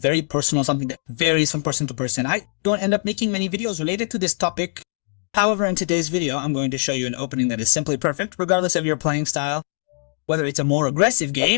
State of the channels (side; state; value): right; silent; 63 dB below the other